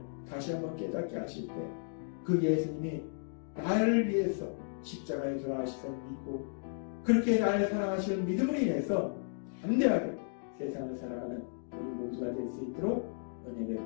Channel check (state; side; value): silent; right; digital silence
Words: 다시 한번 깨닫게 하실 때 그 예수님이 나를 위해서 십자가에 돌아가시서 믿고 그렇게 나를 사랑하시는 믿음으로 인해서 담대하게 세상을 살아가는 우리 모두가 될 수 있도록 은혜